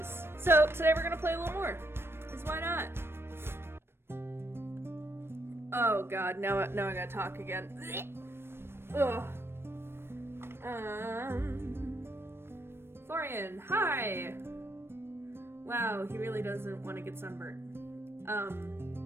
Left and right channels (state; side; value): late; left; 0.12 ms